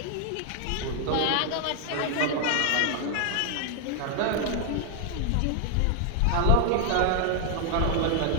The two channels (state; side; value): different; both; correlation 0.00